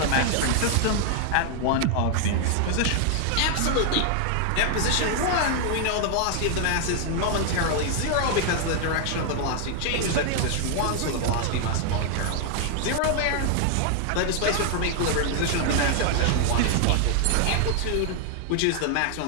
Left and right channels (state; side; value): different; both; correlation 0.00